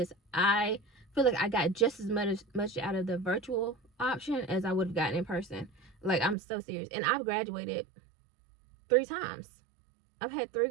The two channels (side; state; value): left; drops out; at 6.4 s